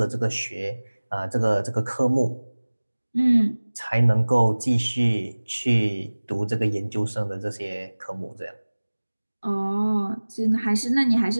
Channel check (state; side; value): inverted; both; correlation -1.00